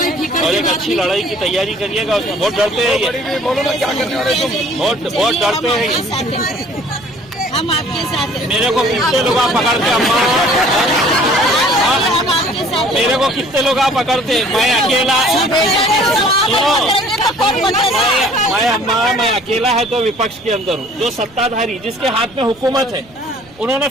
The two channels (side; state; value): right; noise; rumble, 27 dB below the sound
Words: और एक अच्छी लड़ाई की तैयारी करिएगा उसमें। बहुत डरते हैं ये, बहुत डरते हैं ये। हम आपके साथ हैं। मेरे को कितने लोग आप पकड़ते अम्मा, मेरे को कितने लोग आप पकड़ते, मैं अकेला मैं अकेला है तो विपक्ष के अंदर हूँ। जो सत्ताधारी जिसके हाथ में हुकूमत है, उन्होंने